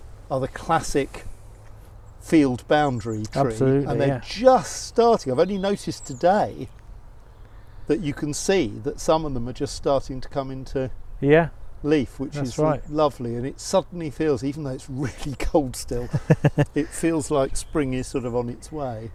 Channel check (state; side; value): identical; both; correlation 1.00